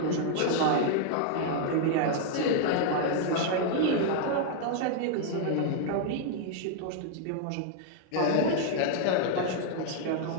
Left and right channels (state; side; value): different; both; correlation 0.00